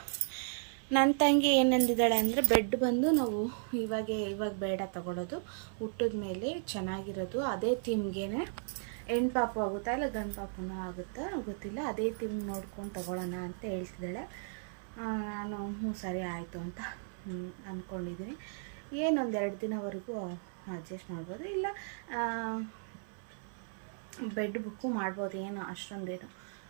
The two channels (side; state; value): left; silent; 54 dB below the other